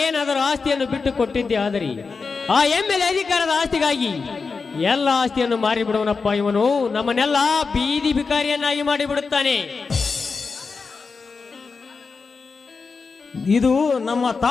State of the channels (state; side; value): quieter; right; 4.7 dB